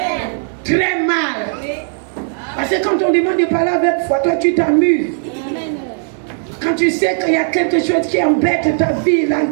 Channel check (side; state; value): left; silent; 66 dB below the other